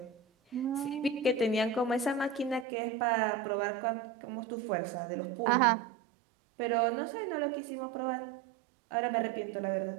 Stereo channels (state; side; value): drops out; left; at 2.7 s